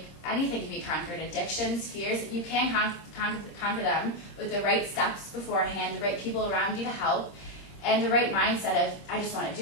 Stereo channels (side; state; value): right; late; 26 ms